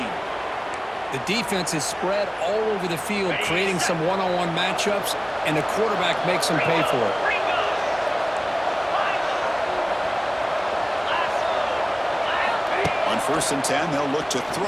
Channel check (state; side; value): identical; both; correlation 1.00